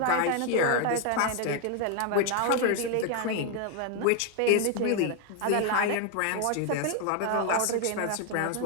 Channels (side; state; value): both; different; correlation 0.01